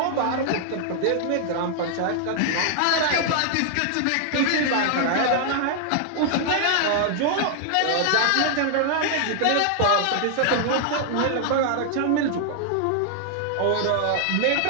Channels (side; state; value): both; different; correlation 0.00